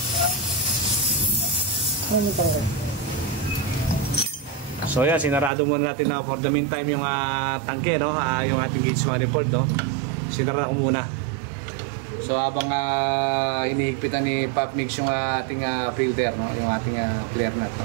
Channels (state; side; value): drops out; left; at 5.5 s